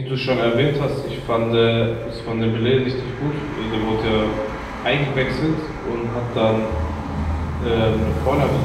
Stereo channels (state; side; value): identical; both; correlation 1.00